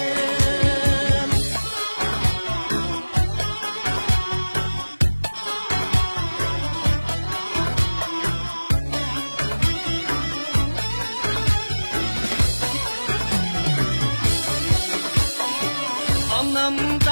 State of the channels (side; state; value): both; inverted; correlation -1.00